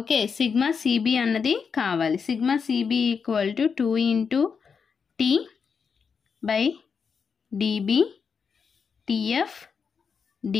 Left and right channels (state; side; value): quieter; right; 6.0 dB